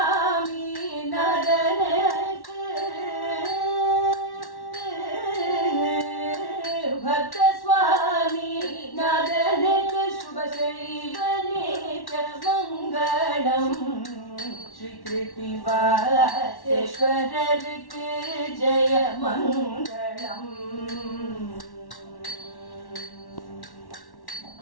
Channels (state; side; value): late; right; 1.1 ms